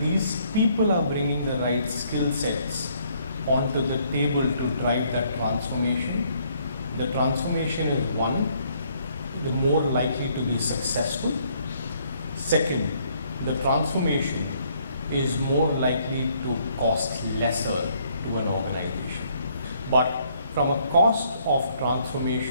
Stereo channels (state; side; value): inverted; both; correlation -0.67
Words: people are bringing the right skill sets onto the table to drive that transformation, the transformation is one, the more likely to be successful. Second, the transformation is more likely to cost lesser to an organization. But from a cost of